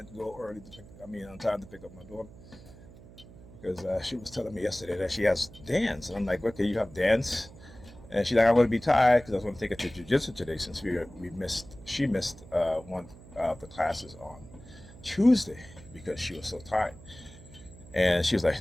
go early on time to pick up my daughter because she was telling me yesterday that she has dance. And I'm like, okay, you have dance? And she's like, I'm going to be tired because I was going to take her to jiu-jitsu today since she missed one of the classes on Tuesday because she was so tired. And she was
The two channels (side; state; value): right; noise; hum, 19 dB below the sound